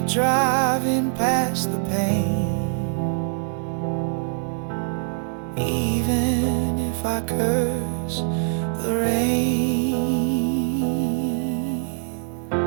driving past the pain, even if I curse the rain.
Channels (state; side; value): silent; left; digital silence